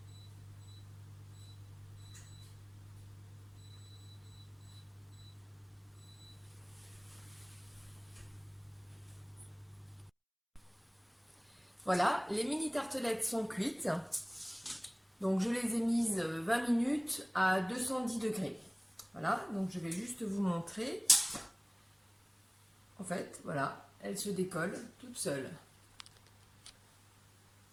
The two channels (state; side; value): identical; both; correlation 1.00